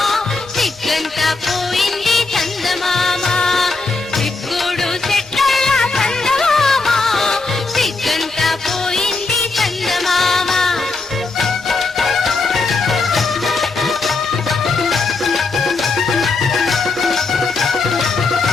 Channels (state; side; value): quieter; right; 3.8 dB